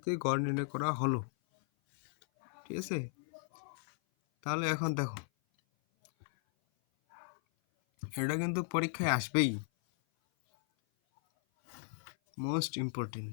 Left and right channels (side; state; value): right; silent; 54 dB below the other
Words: গড় নির্ণয় করা হলো, ঠিক আছে? তাহলে এখন দেখো, এটা কিন্তু পরীক্ষায় আসবেই, মোস্ট ইম্পর্টেন্ট।